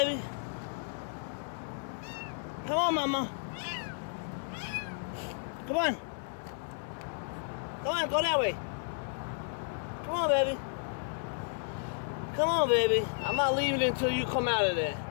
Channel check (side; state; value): right; silent; digital silence